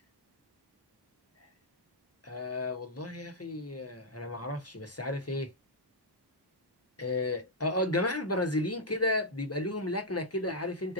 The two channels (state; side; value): normal; both; correlation -0.05